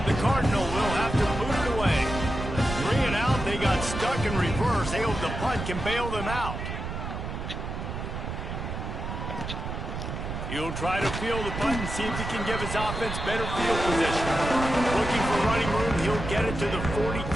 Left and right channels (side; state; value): right; noise; rumble, 6 dB below the sound